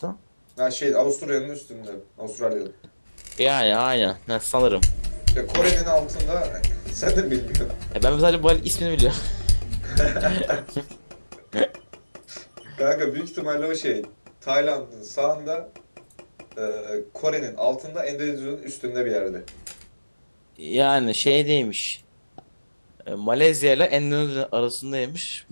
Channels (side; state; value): both; inverted; correlation -1.00